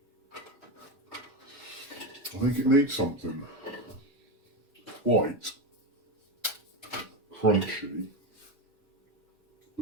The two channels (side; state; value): both; normal; correlation 0.15